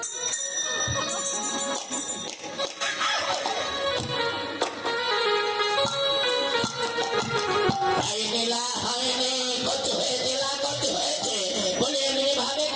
হয়নি কত হয়েছে বলে এমনি ভাবে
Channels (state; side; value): identical; both; correlation 1.00